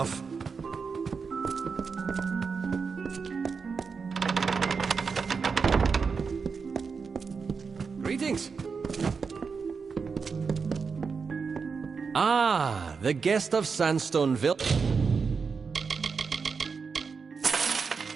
Greetings. Ah, the guest of Sandstone Villa.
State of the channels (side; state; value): left; quieter; 5.3 dB